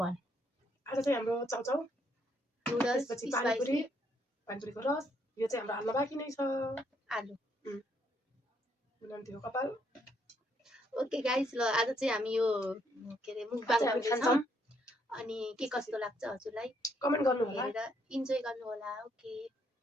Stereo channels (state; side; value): normal; both; correlation 0.72